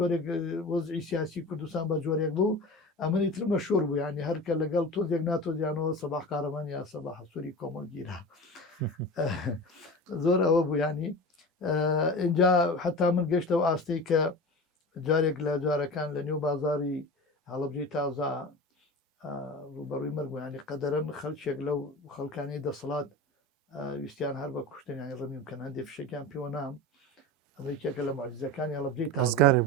وەزعی سیاسی کوردستان بە جۆرێک بوو ئەمەنی تر مەشهور بوو ینی هەرکە لەگەڵ تۆزێک ناتۆزیانەوە سەباح کارەمان یا سەباح سووری کۆمەڵگیرا زۆر ئەوە بوو ینی اینجا حتا من گەشتەوە ئاستەی کە جارێک لە جارەکان لە نێو بازاری هەڵەبجەی تازا ڕوبەڕووی مەرگ ینی قەدەرەن خەڵکێک لەو خەڵکانی دەسەڵات ویستیان هەر بە کوشتن ینی ڕەمیم بکەن هەندێک فشێکیان پێوە نام ئەمریکێکە لە معجزەکانی هەڵەبجەی تازگارێ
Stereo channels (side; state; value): both; normal; correlation 0.31